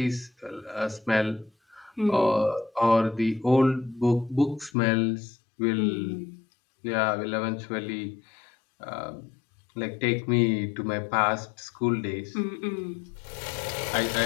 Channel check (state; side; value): drops out; right; at 4.7 s